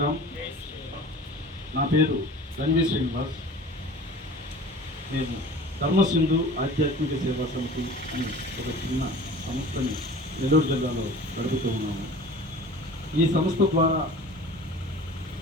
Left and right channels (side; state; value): both; normal; correlation 0.41